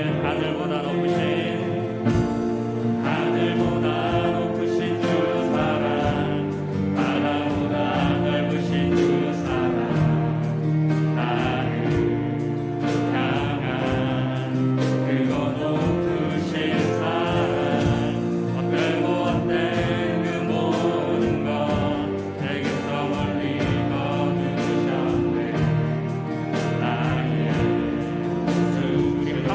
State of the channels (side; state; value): both; identical; correlation 1.00